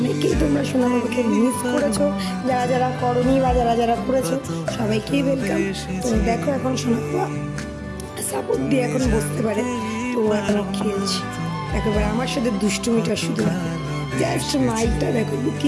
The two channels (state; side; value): identical; both; correlation 1.00